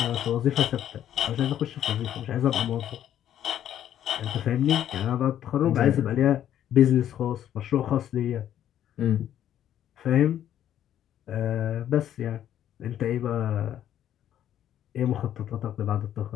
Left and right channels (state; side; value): quieter; right; 11.0 dB